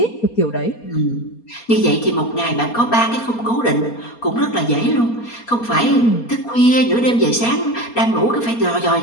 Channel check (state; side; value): late; right; 4.3 ms